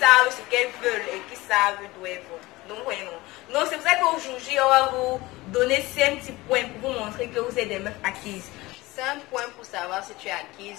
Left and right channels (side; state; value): right; quieter; 20.3 dB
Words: ce qu'elles veulent et qui savent d'où elles vont. Donc, voyez, non. Donc, c'est pour ça qu'aujourd'hui, on va vous donner 5 petits points pour vous montrer que vous êtes des meufs acquises. 5 points pour savoir si tu es